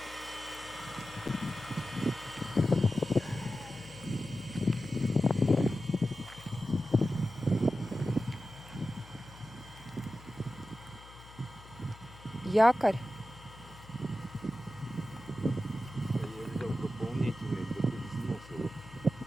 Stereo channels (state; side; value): noise; left; hum, 19 dB below the sound